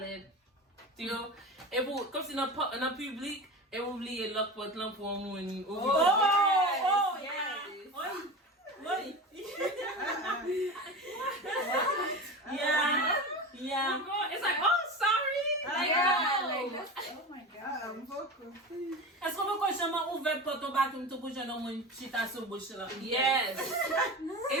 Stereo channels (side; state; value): both; normal; correlation 0.28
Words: tiyo, e pou, kom si nan publik, e pou bliye lok pot lan pou moun, ou Yeah. It's like, oh, sorry. Like, no. Oh my God, Mboko. Est-ce qu'on peut qu'on chama ouvert porte au bathroom tout pour jeune homme chita sur bouche là? Yes.